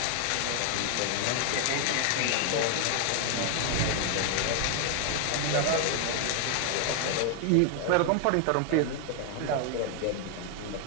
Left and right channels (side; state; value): both; different; correlation 0.00